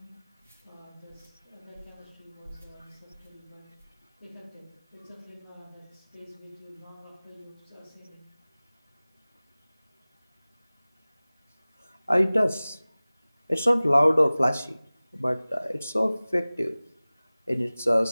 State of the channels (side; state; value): both; inverted; correlation -0.99